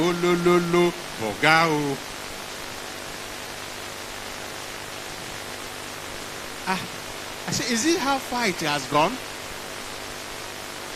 bogao. I said, is it how far it has gone?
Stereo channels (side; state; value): both; identical; correlation 1.00